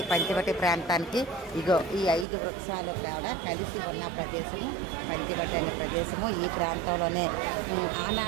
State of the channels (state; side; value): drops out; left; at 2.2 s